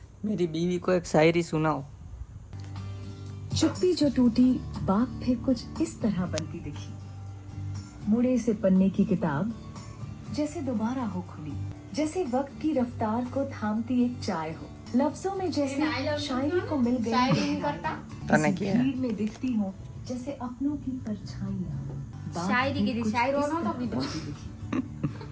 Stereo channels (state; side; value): identical; both; correlation 1.00